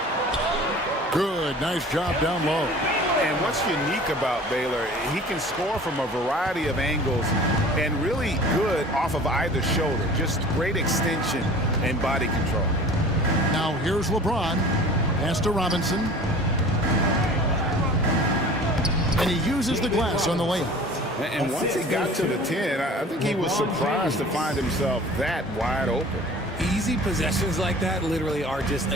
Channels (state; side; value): normal; both; correlation 0.44